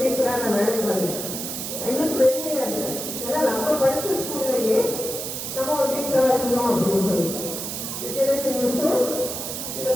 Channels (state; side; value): noise; right; hiss, 5 dB below the sound